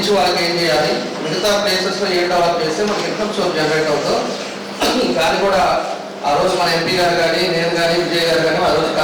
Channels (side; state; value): both; identical; correlation 1.00